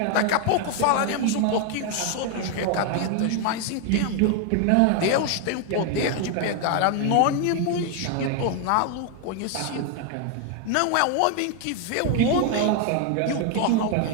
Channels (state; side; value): different; both; correlation 0.01